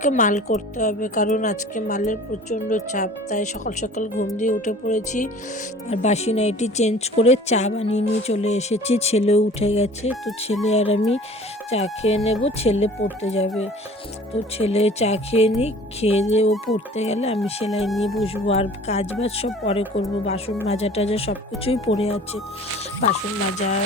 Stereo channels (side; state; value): both; normal; correlation 0.46